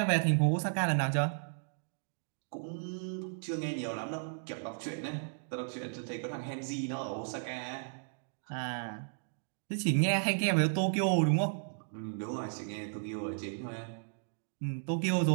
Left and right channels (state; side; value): silent; left; digital silence